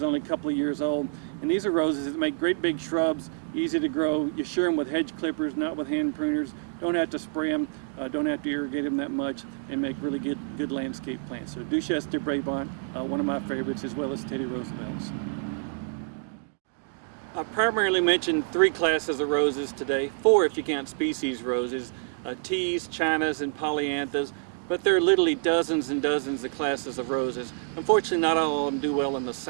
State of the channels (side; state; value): left; silent; 60 dB below the other